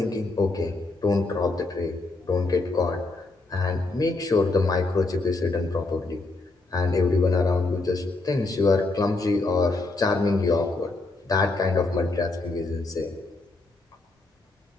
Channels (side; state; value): right; quieter; 3.3 dB